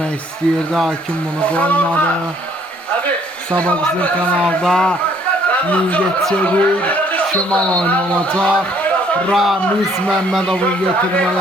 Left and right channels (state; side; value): normal; both; correlation 0.63